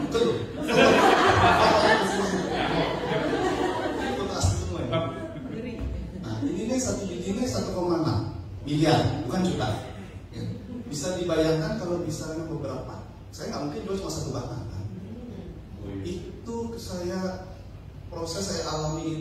Google. Foto asli semua ya. Nah, ini satu biji ini 1,6 miliar, bukan juta. Ya. Bisa dibayangkan kalau misalnya beberapa. Saya nggak mungkin jual cuma 1 batang kan. Itu proses saya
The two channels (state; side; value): identical; both; correlation 1.00